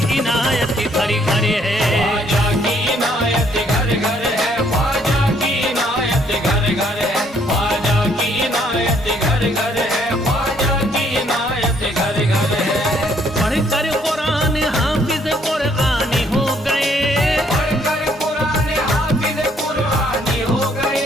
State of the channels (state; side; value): normal; both; correlation 0.67